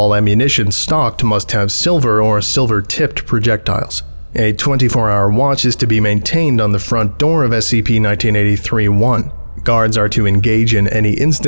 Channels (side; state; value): both; inverted; correlation -1.00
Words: ammunition stocked must have silver or silver-tipped projectiles. A 24-hour watch is to be maintained on the front door of SCP-1983-1. Guards are to engage in any